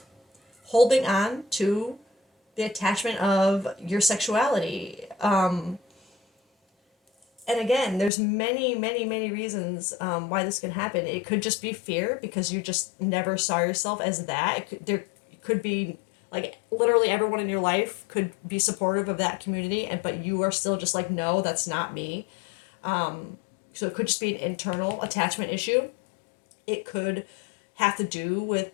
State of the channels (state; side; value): drops out; right; at 8.1 s